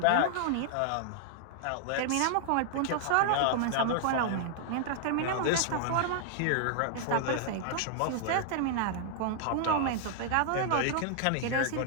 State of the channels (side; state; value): both; different; correlation -0.01